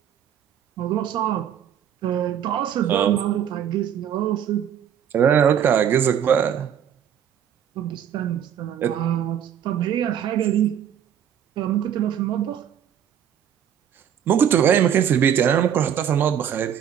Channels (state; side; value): quieter; left; 9.1 dB